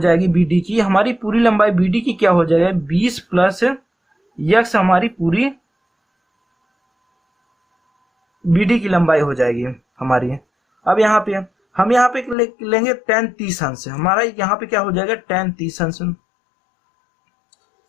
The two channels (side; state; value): right; drops out; at 12.4 s